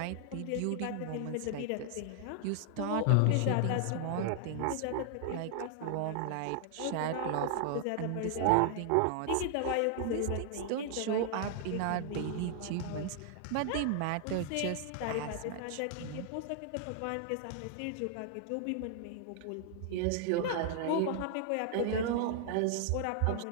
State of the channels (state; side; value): different; both; correlation 0.00